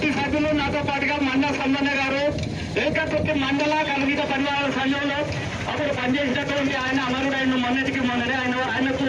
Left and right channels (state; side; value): identical; both; correlation 1.00